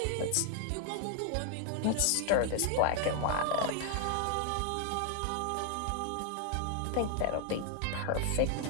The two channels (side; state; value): both; different; correlation 0.00